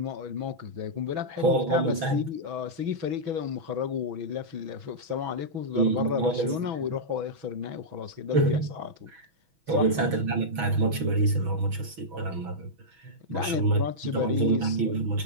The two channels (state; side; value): late; left; 6.1 ms